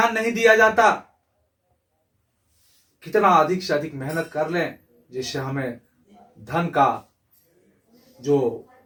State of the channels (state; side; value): identical; both; correlation 1.00